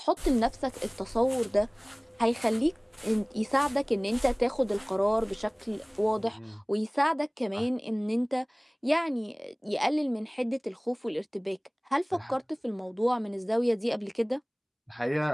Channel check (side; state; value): both; identical; correlation 1.00